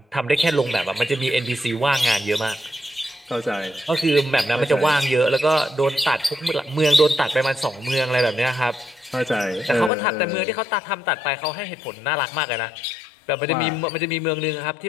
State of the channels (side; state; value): right; drops out; at 9.9 s